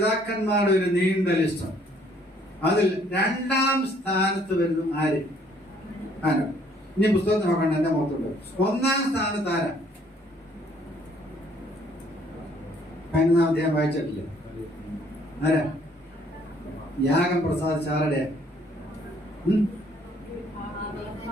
ഒരു നീണ്ട ലിസ്റ്റ്. അതിൽ 2ാം സ്ഥാനത്ത് വരുന്നു ആര്? ആരോ? ഇനി പുസ്തകത്തിൽ നോക്കണ്ട, എന്റെ മുഖത്തുണ്ട്. 1ാം സ്ഥാനത്ത് ആരാ? 11ാം അധ്യായം വായിച്ചിട്ടില്ല. ആരാ? യാഗം പ്രസാദിച്ച ആരുടെ?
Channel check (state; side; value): normal; both; correlation 0.63